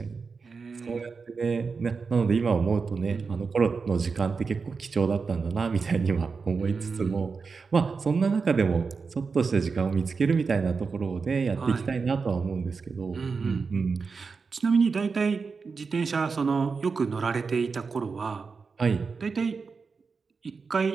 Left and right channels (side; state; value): left; quieter; 4.9 dB